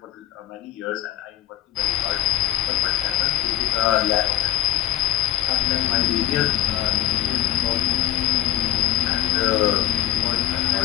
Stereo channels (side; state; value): right; quieter; 13.4 dB